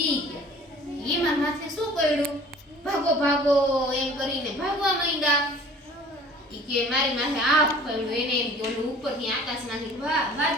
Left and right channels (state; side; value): normal; both; correlation 0.49